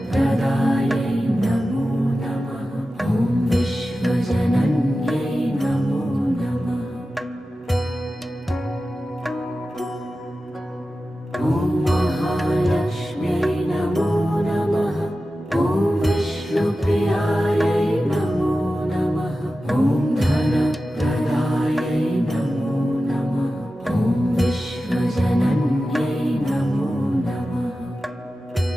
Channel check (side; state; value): both; normal; correlation 0.93